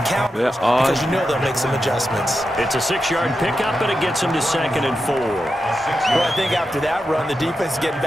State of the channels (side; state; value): both; normal; correlation 0.89